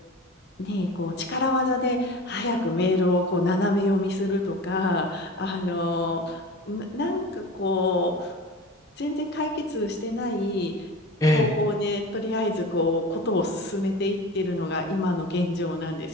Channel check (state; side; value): normal; both; correlation 0.35